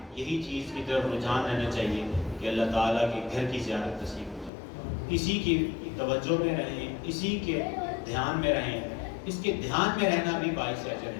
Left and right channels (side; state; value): right; drops out; at 4.5 s